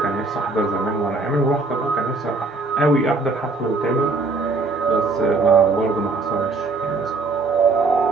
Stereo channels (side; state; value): left; quieter; 3.7 dB